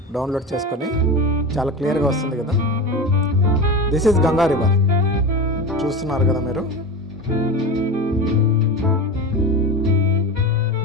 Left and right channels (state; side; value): normal; both; correlation 0.25